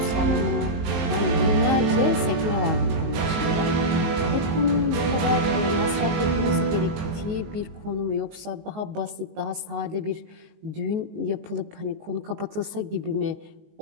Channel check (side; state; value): left; late; 19 ms